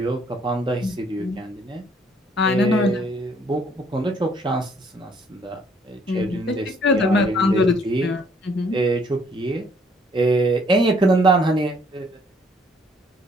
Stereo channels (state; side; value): normal; both; correlation 0.63